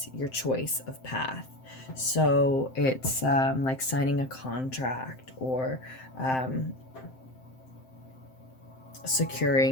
your choice of path. So it's like signing a contract, or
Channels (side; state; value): right; late; 7.7 ms